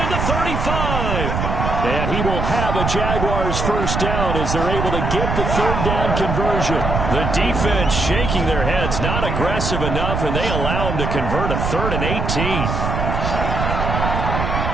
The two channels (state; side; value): noise; right; rumble, 1 dB below the sound